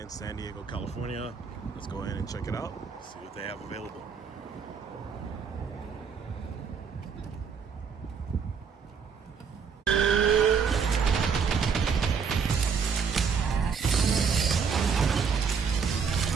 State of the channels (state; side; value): quieter; left; 6.1 dB